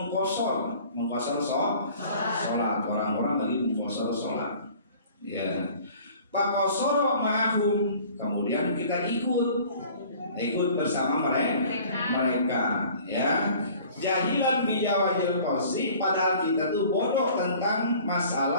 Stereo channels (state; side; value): inverted; both; correlation -0.49